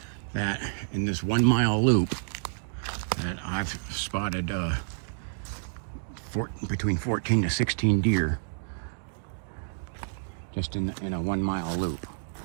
that in this 1 mile loop that I've spotted between 14 to 16 deer just in a 1 mile loop.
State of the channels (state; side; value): silent; left; digital silence